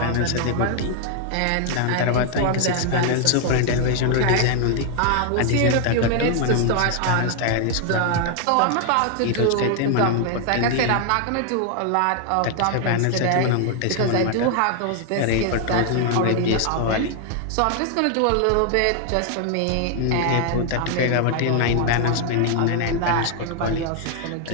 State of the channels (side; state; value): both; different; correlation 0.00